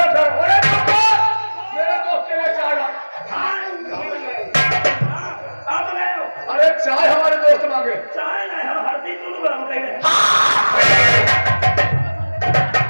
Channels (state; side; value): inverted; both; correlation -1.00